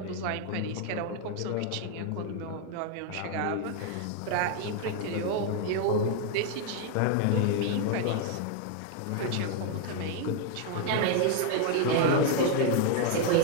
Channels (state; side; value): different; both; correlation 0.01